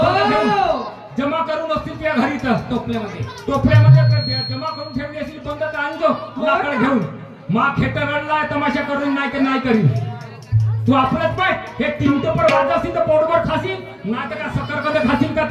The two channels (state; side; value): identical; both; correlation 1.00